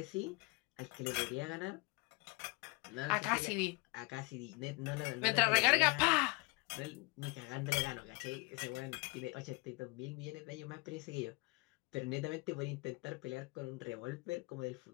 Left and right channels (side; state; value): right; quieter; 26.8 dB